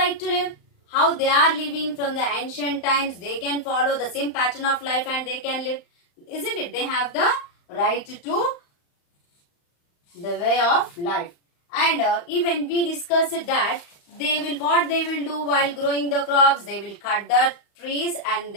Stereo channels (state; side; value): late; right; 35 ms